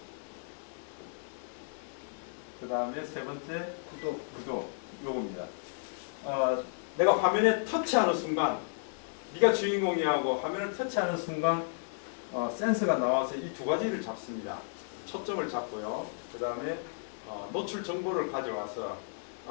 그 다음에 세 번째 구도 요겁니다. 내가 화면에 터치하는 순간 네가 주인공이 하고 화면을 터치하는 순간 센서가 나와서 이 두 가지를 잡습니다. 초점을 잡고요. 그 다음에 노출 정보를 가져와서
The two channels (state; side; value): silent; right; digital silence